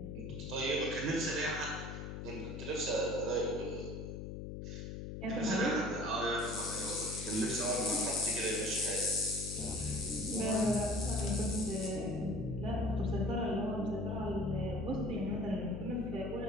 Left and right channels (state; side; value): noise; left; hum, 7 dB below the sound